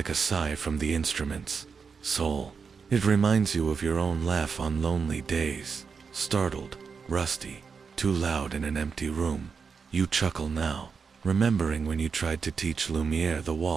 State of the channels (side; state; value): left; quieter; 5.6 dB